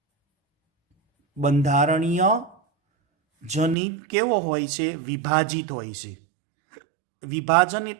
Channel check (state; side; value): drops out; left; at 3.8 s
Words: બંધારણીય જનીન કેવો હોય છે? વિભાજિત હોય છે. વિભાજન